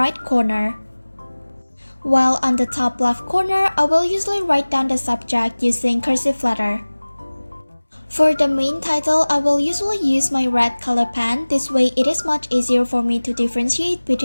corner. While on the top left corner, I will usually write down the subject using cursive letter. For the main title, I will usually use my red color pen. This way it is much easier for me to differentiate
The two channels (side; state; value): both; inverted; correlation -1.00